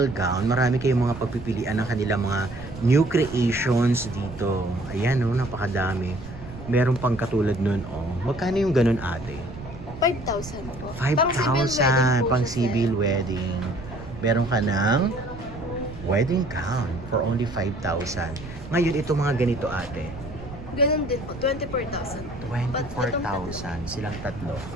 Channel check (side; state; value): right; noise; rumble, 13 dB below the sound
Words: Gown. Marami kayong mga pagpipilian ng kanilang mga new creations dito. Ayan, napakadami. Meron pang katulad nun, Magkano yung ganun, ate? 5,000 po. 5,000 pang civil wedding. Meron ka ng wedding gown for only 5,000. Ngayon, ito mga ganito, ate. Ganun din po, 24,000. 24,000 silang tatlo.